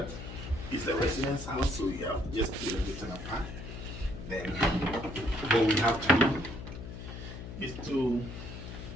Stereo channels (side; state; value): left; noise; hum, 10 dB below the sound